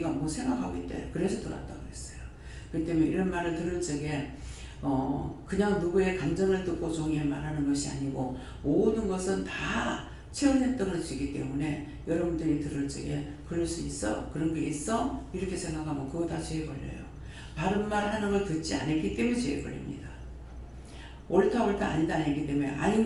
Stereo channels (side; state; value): both; identical; correlation 1.00